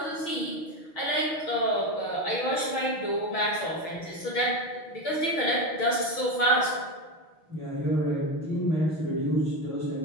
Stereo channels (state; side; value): late; right; 6.3 ms